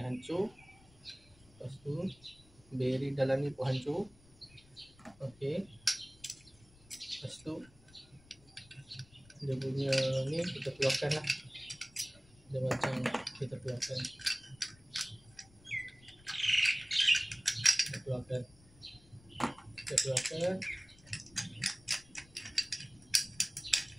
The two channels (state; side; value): noise; left; rumble, 26 dB below the sound